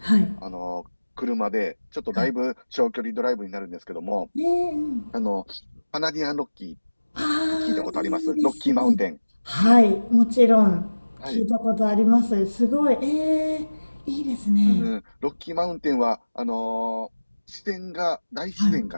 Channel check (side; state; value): both; inverted; correlation -1.00